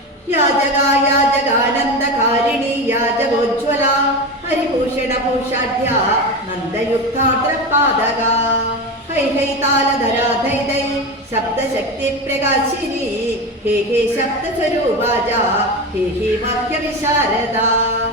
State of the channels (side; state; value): both; normal; correlation 0.21